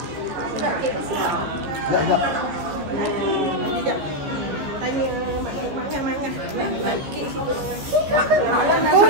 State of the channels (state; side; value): late; left; 14 ms